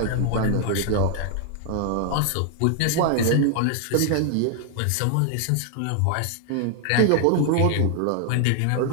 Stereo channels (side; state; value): both; different; correlation 0.00